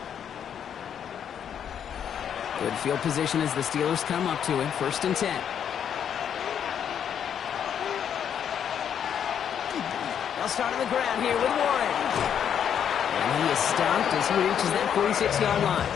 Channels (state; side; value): quieter; right; 8.6 dB